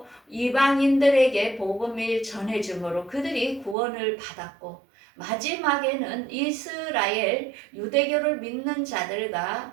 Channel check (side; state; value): left; drops out; at 3.8 s